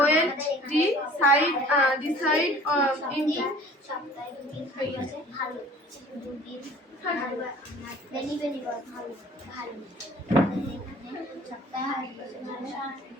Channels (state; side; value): normal; both; correlation 0.48